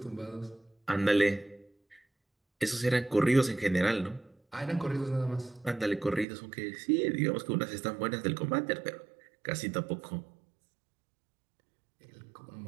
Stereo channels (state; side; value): drops out; left; at 6.2 s